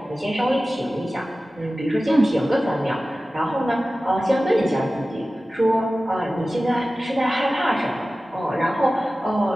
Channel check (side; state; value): both; normal; correlation 0.96